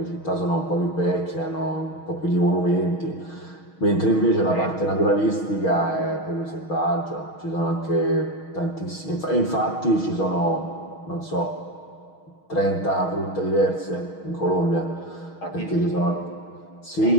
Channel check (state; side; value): late; right; 6.3 ms